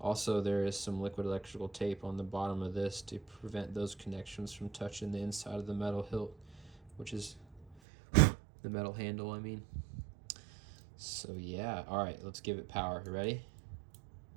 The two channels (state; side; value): drops out; left; at 7.8 s